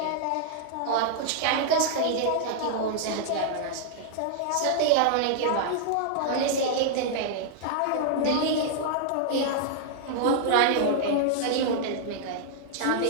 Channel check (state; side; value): different; both; correlation -0.01